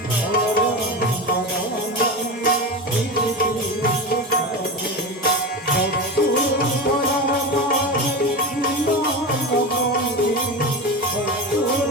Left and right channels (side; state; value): both; normal; correlation 0.22